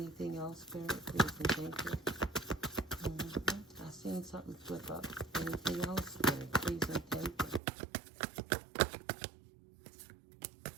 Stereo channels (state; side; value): drops out; left; at 7.6 s